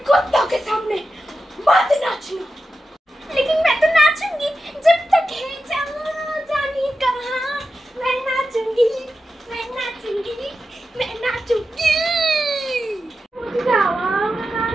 कुत्तों के सामने मत नाचना। लेकिन मैं तो नाचूंगी जब तक है जानी कहाँ। मैं नाचूंगी, मैं नाचूंगी, मैं नाचूंगी। मुझे जावा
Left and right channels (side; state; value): both; normal; correlation 0.91